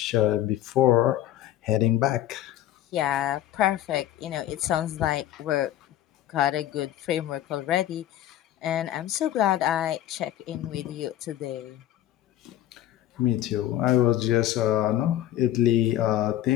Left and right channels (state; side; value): quieter; right; 12.8 dB